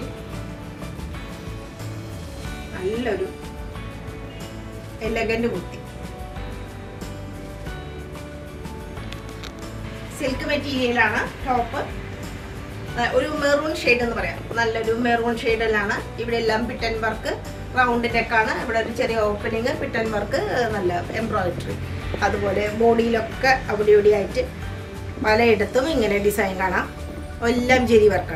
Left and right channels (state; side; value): identical; both; correlation 1.00